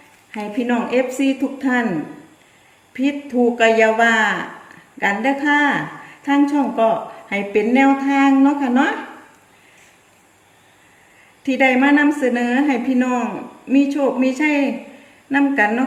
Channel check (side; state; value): both; identical; correlation 1.00